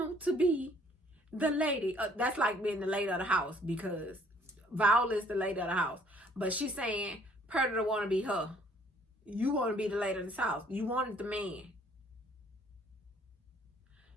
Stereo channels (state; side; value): normal; both; correlation 0.60